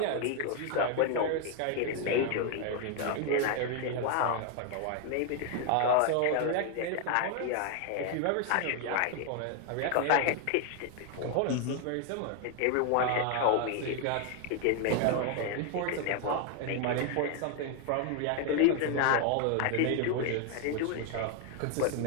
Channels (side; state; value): both; different; correlation 0.01